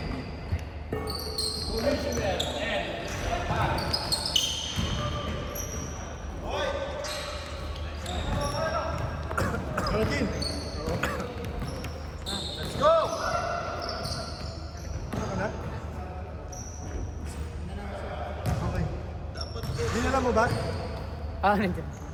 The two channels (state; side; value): identical; both; correlation 1.00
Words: Commissioner and Hello, team. Let's go. Ano na? Okay. Dinala mo ba? Nandiyan.